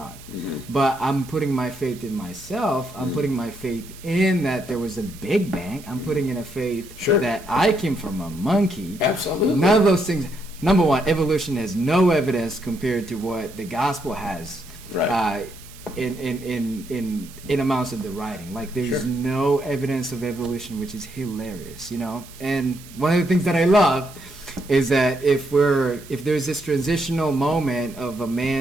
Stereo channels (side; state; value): right; noise; hiss, 20 dB below the sound